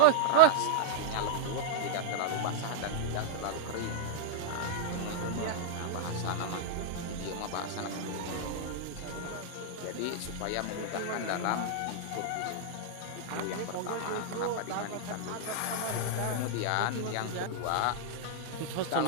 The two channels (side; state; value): both; different; correlation -0.01